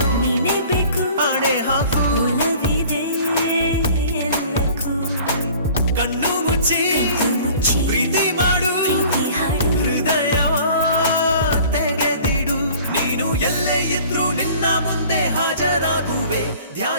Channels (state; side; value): inverted; both; correlation -0.48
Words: ನೀನೇ ಬೇಕು, ಆಣೆ ಹಾಕು ಒಲವಿದೆ ಎಲ್ಲಕ್ಕೂ. ಕಣ್ಣು ಮುಚ್ಚಿ ಮುಚ್ಚಿ ಪ್ರೀತಿ ಮಾಡು, ಪ್ರೀತಿ ಹಾಡು, ಹೃದಯ ತೆಗೆದಿಡು. ನೀನು ಎಲ್ಲೇ ಇದ್ರೂ ನಿನ್ನ ಮುಂದೆ ಹಾಜರಾಗುವೆ.